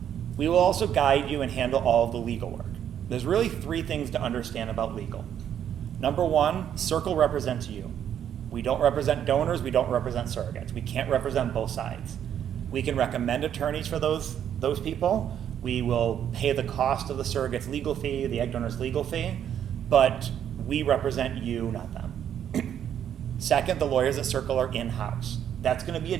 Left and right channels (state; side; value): quieter; left; 9.6 dB